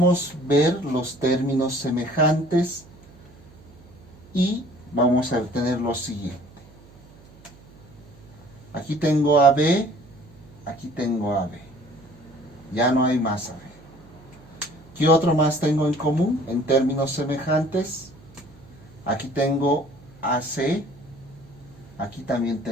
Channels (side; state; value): right; noise; hum, 24 dB below the sound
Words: ver los términos semejantes y vamos a obtener lo siguiente. Aquí tengo AB, aquí tengo AB. Ya no hay más AB. ¿Qué otro más tengo en común en términos semejantes? Aquí tengo AC, aquí también